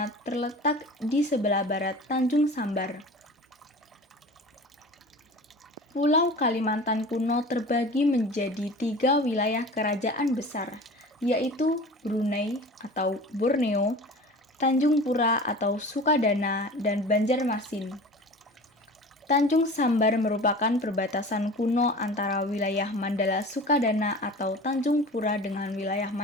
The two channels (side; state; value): both; normal; correlation 0.38